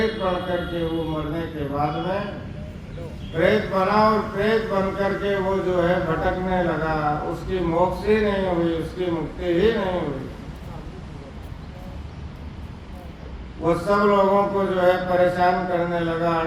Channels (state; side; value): identical; both; correlation 1.00